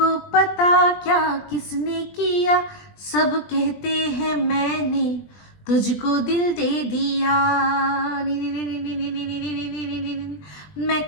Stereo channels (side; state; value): right; late; 20 ms